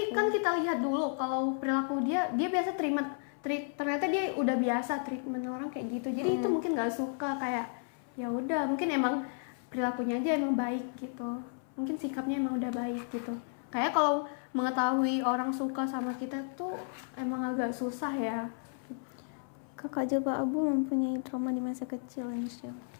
kan kita lihat dulu kalau perilaku dia biasa ternyata dia udah biasa treatment orang kayak gitu. Jadi itu mungkin nggak suka, kayak ya udah mungkin emang perilakunya aja emang baik gitu. Mungkin sikapnya emang udah baik gitu. Kayak kalau mengetahui orang suka sama kita tuh emang agak susah ya. Kakak Jilbab Abu mempunyai trauma di masa kecil, Insya.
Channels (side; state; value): right; silent; 56 dB below the other